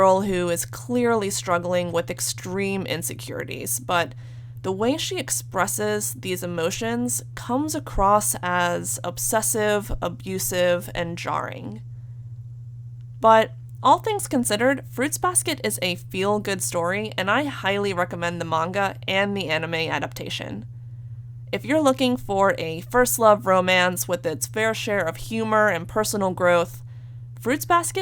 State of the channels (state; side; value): identical; both; correlation 1.00